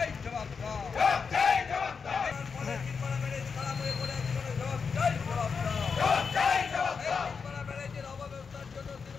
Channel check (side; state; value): right; quieter; 5.6 dB